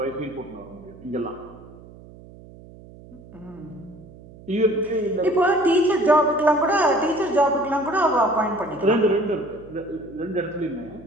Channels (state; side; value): noise; right; hum, 20 dB below the sound